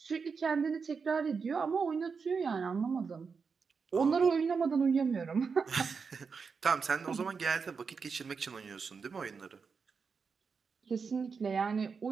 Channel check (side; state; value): left; quieter; 5.4 dB